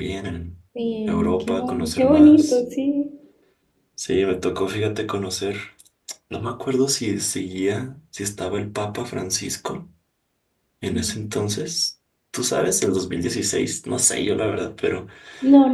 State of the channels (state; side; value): identical; both; correlation 1.00